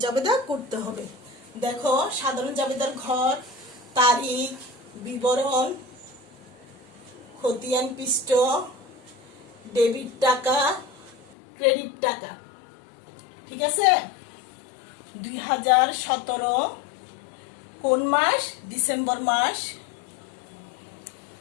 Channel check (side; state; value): right; drops out; at 11.2 s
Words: জাবেদা করতে হবে। দেখো সাধারণ জাবেদার ঘর, তারিখ, বিবরণ, খতিয়ান পৃষ্ঠ, ডেবিট টাকা, ক্রেডিট টাকা। ঠিক আছে? 2017 কোন মাস? ডিসেম্বর মাস।